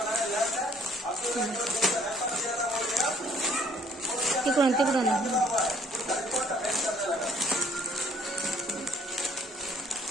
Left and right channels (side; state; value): both; normal; correlation 0.61